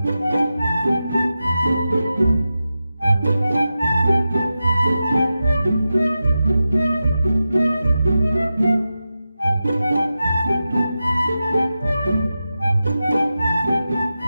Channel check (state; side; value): inverted; both; correlation -0.92